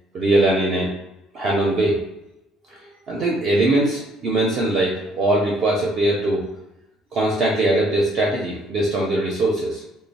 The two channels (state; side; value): normal; both; correlation 0.66